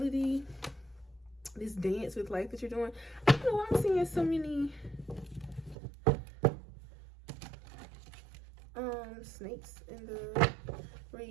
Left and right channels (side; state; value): left; drops out; at 5.8 s